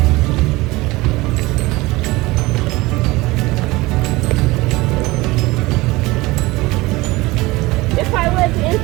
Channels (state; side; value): quieter; left; 21.1 dB